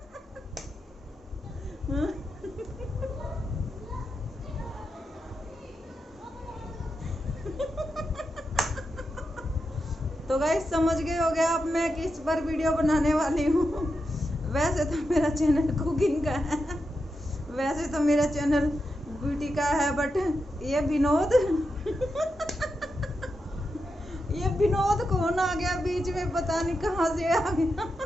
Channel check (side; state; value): both; normal; correlation 0.87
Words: तो गाइस समझ गए हो गया अब मैं किस पर वीडियो बनाने वाली हूँ। वैसे तो मेरा चैनल कुकिंग का है, वैसे तो मेरा चैनल ब्यूटी का है, बट ये विनोद ये विनोद कौन आ गया बीच में, पता नहीं कहाँ से आ गया।